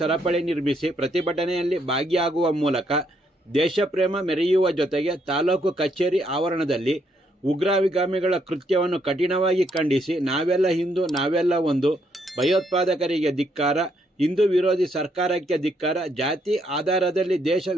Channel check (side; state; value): both; normal; correlation 0.73